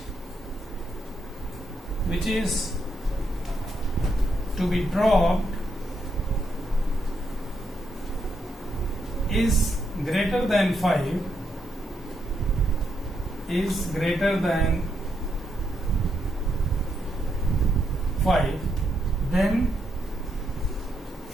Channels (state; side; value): normal; both; correlation 0.79